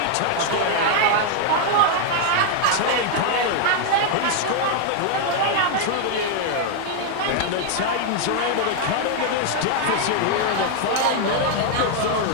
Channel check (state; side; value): different; both; correlation 0.00